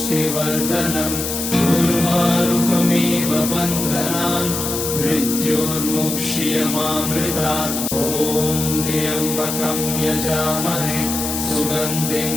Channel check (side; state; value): left; noise; hiss, 4 dB below the sound